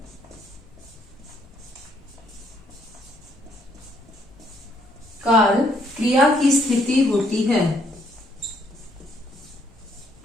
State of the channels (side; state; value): both; normal; correlation 0.69